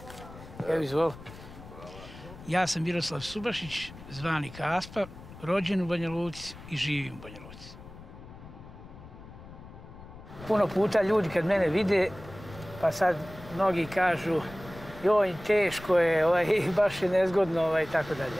Evo izvoli. Ja sam Miroslav Subašić, zvani Kaspa, rođen u Banja Luci i živim u Banja Luci. Puno puta ljudi kad mene vide, pa sad mnogi kažu joj, teško je, baš je nezgodno, i tako dalje.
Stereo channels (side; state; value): left; noise; rumble, 16 dB below the sound